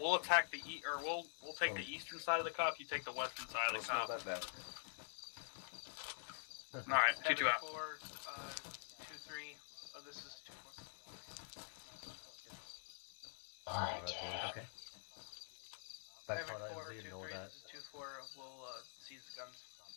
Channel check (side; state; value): right; silent; digital silence